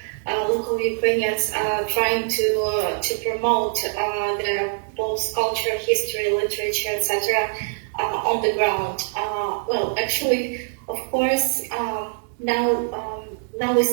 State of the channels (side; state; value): left; silent; digital silence